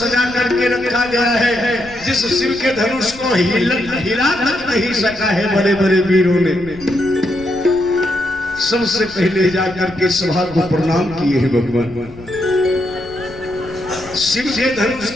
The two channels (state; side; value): noise; left; rumble, 19 dB below the sound